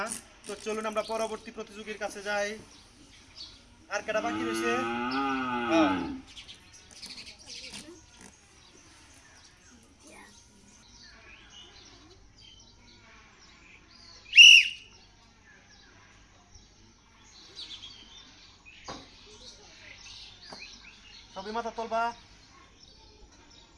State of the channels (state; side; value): identical; both; correlation 1.00